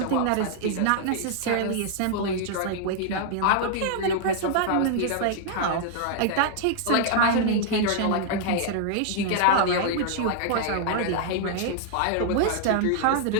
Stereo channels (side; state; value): both; different; correlation -0.01